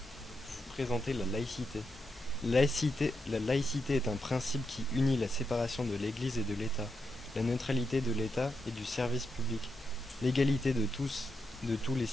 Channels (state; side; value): normal; both; correlation 0.84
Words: présenter la laïcité. La laïcité est un principe qui unit la séparation de l'Église et de l'État, la neutralité de l'État et du service public, l'égalité de tous les